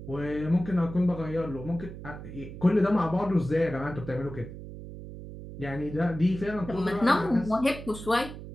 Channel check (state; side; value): noise; right; hum, 12 dB below the sound